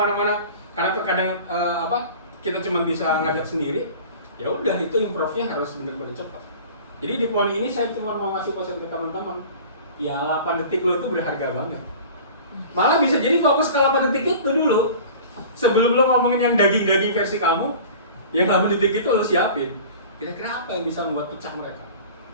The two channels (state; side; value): inverted; both; correlation -0.41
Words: karena terkadang kita cuma bisa ngajak sendiri, ya udah itu improve-nya harus benar-benar cepat. Jadi di poin ini saya cuma mau ngasih pesan ke teman-teman, ya 8 detik lo itu berharga banget. Malah bisa jadi fokus ke 8 detik itu dulu. Sebelum lo ngomongin yang daging-daging versi kamu, yang 8 detik itu lo siapin. Kira-kira apa yang bisa membuat pecah mereka?